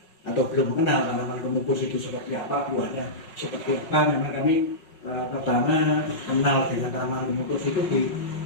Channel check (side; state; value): right; late; 5.4 ms